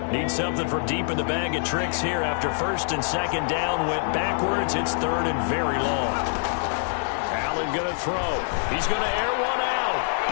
Need something from deep in the bag of tricks here after first and second down went backwards. It's third and very long. Allen going to throw. He's going to air one out.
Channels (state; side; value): silent; right; digital silence